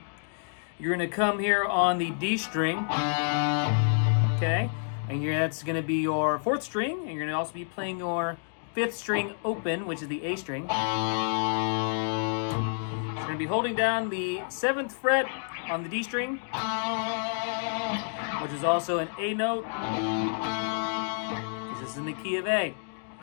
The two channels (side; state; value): right; silent; digital silence